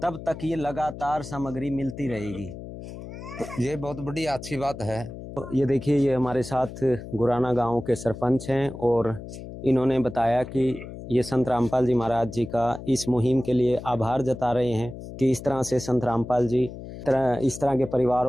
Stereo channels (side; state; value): left; noise; hum, 12 dB below the sound